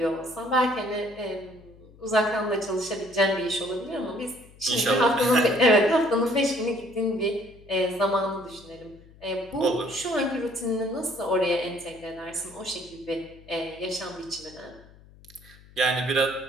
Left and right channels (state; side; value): noise; left; hum, 24 dB below the sound